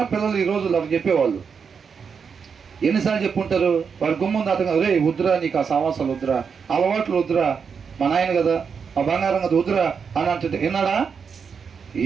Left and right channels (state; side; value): quieter; left; 6.2 dB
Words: పిల్లలు ఈ రోజులు అవి చెప్పేవాళ్ళు. ఎన్నిసార్లు చెప్పుంటారు? వారి గుమ్మంది అతను, రే వద్దురా, నీకు ఆ సమాసాలు వద్దురా, అలవాట్లు వద్దురా, మా నాయన కదా, ఆ బంగారం కదా వద్దురా అని అంటే విన్నాడా?